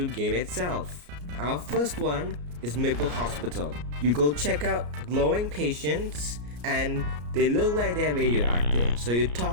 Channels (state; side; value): late; left; 34 ms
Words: game itself. Our first one is Maple Hospital. You go check out glowing patients and they look like they're radioactive. So you